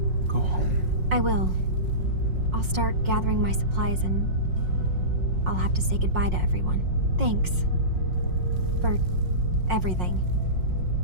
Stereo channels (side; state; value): left; late; 5.5 ms